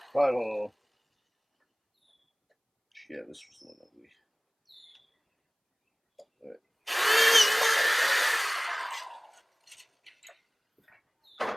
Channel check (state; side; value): identical; both; correlation 1.00